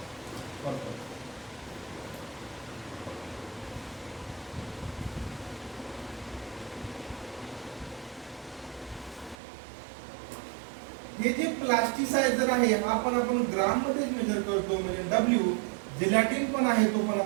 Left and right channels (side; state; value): left; drops out; at 9.3 s